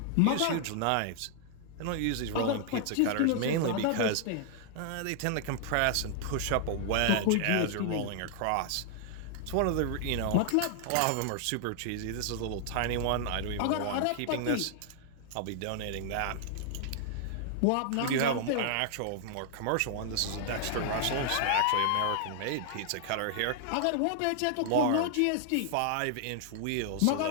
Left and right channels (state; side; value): different; both; correlation 0.00